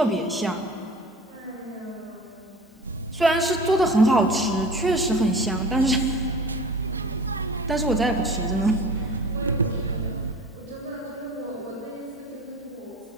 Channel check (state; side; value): normal; both; correlation 0.40